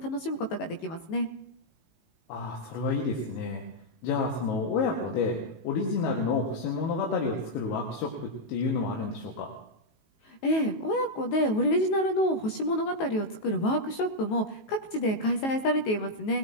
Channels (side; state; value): right; late; 19 ms